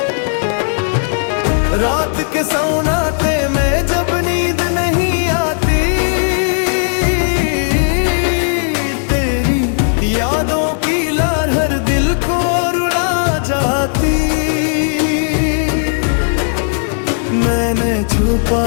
रात के सन्नाटे में जब नींद नहीं आती, तेरी यादों की लहर दिल को रुला जाती। मैंने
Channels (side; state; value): right; silent; digital silence